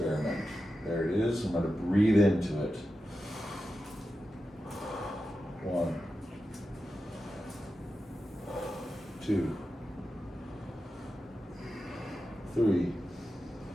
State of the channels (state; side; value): normal; both; correlation 0.91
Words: There it is. I'm going to breathe into it. 1, 2, 3,